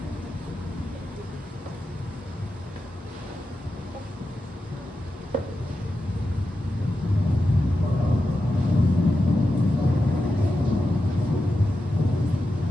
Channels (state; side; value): normal; both; correlation 0.90